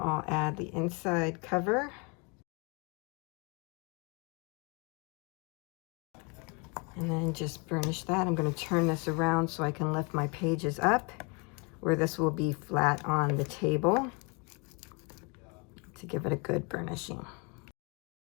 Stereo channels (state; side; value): quieter; right; 31.9 dB